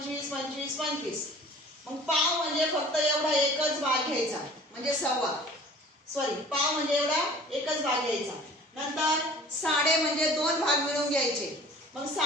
25, 25. मग पाव म्हणजे फक्त एवढा एकच भाग घ्यायचा, म्हणजे सव्वा. पाव म्हणजे एवढा एकच भाग घ्यायचा. नंतर साडे म्हणजे 2 भाग मिळून घ्यायचे. मग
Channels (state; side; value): normal; both; correlation 0.46